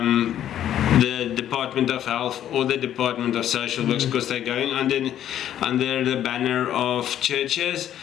the Department of Health or the Department of Social Works, because they're going under the banner of churches,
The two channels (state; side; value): quieter; right; 11.0 dB